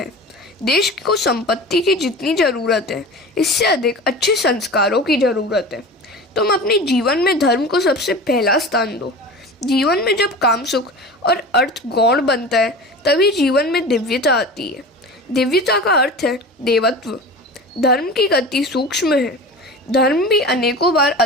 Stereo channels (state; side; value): normal; both; correlation 0.34